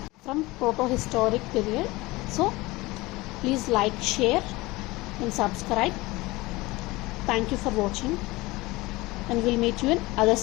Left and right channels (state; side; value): quieter; right; 21.1 dB